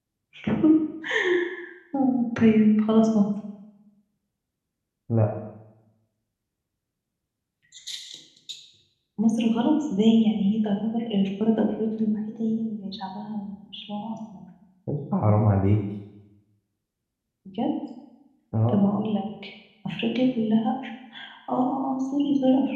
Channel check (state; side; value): identical; both; correlation 1.00